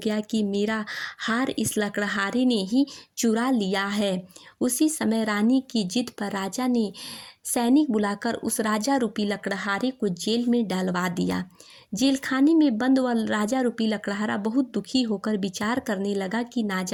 कि मेरा हार इस लकड़हारे ने ही चुरा लिया है। उसी समय रानी की जिद पर राजा ने सैनिक बुलाकर उस राजा रूपी लकड़हारे को जेल में डालवा दिया। जेलखाने में बंद वह राजा रूपी लकड़हारा बहुत दुखी होकर विचार करने लगा कि ना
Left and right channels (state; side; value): identical; both; correlation 1.00